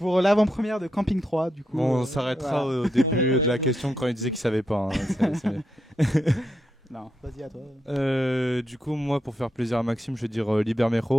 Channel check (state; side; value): normal; both; correlation 0.83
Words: l'avant-première de Camping 3, du coup. Bon, on s'arrêtera au début On va- de ouais, la donc- question quand il disait qu'il savait pas. hein. Non, vas-y à toi. Du coup, moi, pour faire plaisir à Maxime, je vais dire